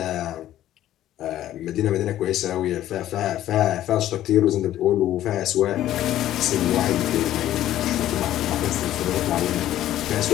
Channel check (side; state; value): right; quieter; 12.9 dB